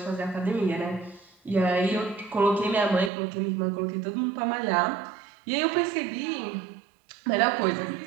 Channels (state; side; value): drops out; left; at 3.1 s